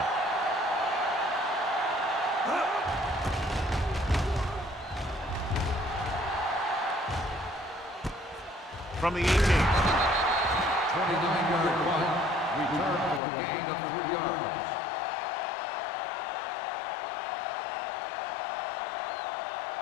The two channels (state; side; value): drops out; right; at 13.2 s